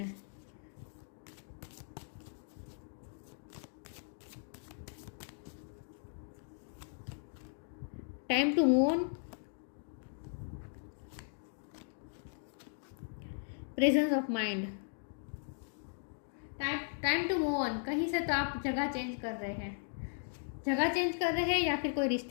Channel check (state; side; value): silent; right; digital silence